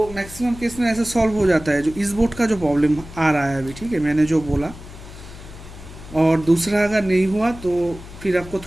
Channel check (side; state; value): left; noise; hum, 16 dB below the sound